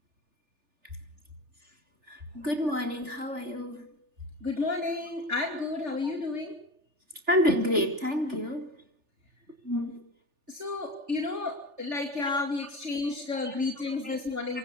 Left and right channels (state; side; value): late; left; 3.4 ms